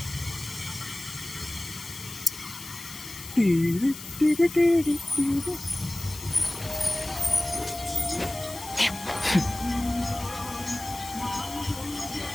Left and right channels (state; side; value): noise; left; hiss, 12 dB below the sound